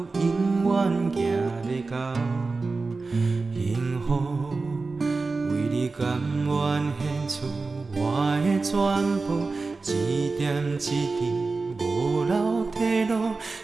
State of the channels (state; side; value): quieter; left; 3.9 dB